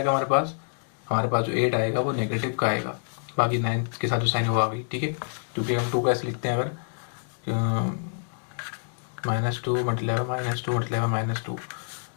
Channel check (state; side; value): silent; right; digital silence